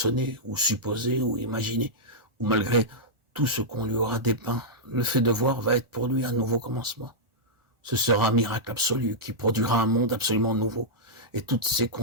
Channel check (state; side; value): late; left; 1.4 ms